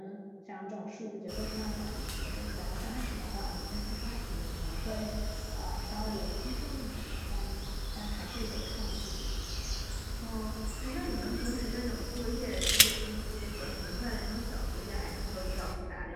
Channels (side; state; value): both; identical; correlation 1.00